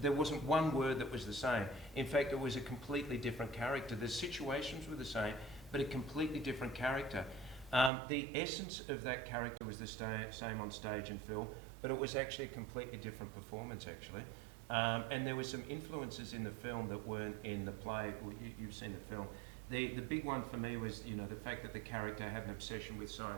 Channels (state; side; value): drops out; left; at 7.9 s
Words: there wasn't one word that was the same. In fact, it was a completely different character. The situations were the same, but a completely different character. The essence of that character was the same on stage and film, but it was actually a completely different performance actually. And there were some influences in the film that weren't in the play. Well, you've seen the film. The big one for me was, the fact that the character had an obsession with